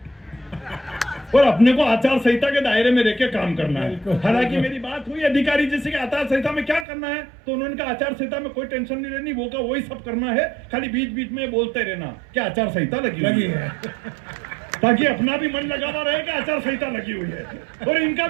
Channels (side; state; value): left; drops out; at 6.9 s